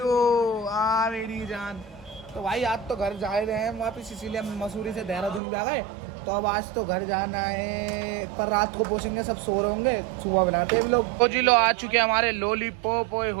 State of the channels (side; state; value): left; drops out; at 5.4 s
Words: आ मेरी जान। तो भाई आज तो घर जा रहे हैं वापस, इसीलिए हम मसूरी से देहरादून भी आ गए। तो अब आज तो घर जाना है, पर रात को पहुंचेंगे, सब सो रहे होंगे, सुबह बनाते हैं लोग। तो जी लो आ चुके हैं हमारे लॉलीपॉप। ओए